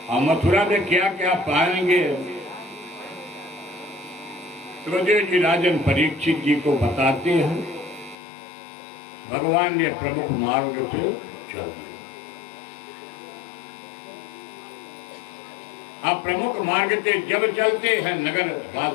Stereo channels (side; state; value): right; drops out; at 8.2 s